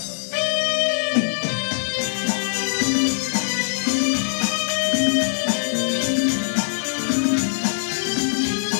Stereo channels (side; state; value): right; silent; digital silence